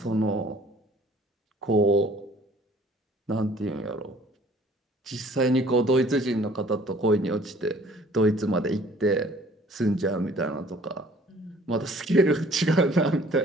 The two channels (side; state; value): both; normal; correlation 0.55